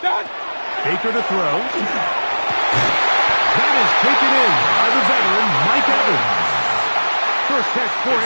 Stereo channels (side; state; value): both; inverted; correlation -1.00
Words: Baker to throw. That is taken in by the veteran, Mike Evans. First catch for